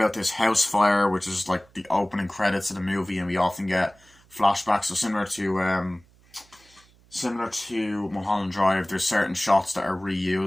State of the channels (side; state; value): right; noise; hum, 29 dB below the sound